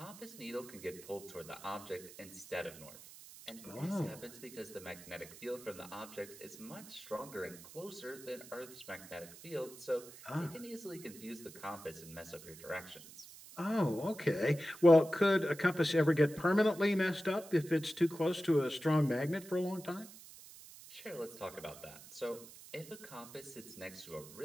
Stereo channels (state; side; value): noise; right; hiss, 17 dB below the sound